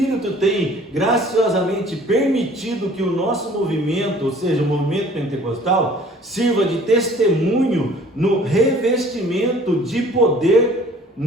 tem graciosamente permitido que o nosso movimento, ou seja, o movimento pentecostal, sirva de testemunho no revestimento de poder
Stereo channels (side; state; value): both; normal; correlation 0.51